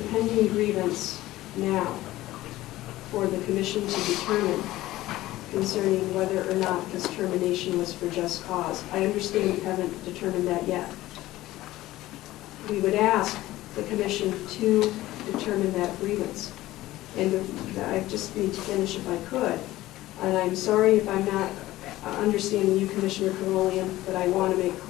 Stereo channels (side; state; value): right; quieter; 16.4 dB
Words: grievance now for the commission to determine concerning whether or not this termination was for just cause. I understand you haven't determined that yet. We would ask the commission to determine that grievance. And I just need to finish if I could. And I'm sorry if I'm not understanding you, Commissioner Carolian, but I want to make